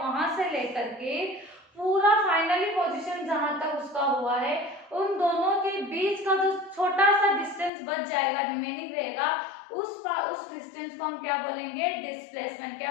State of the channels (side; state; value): right; drops out; at 7.7 s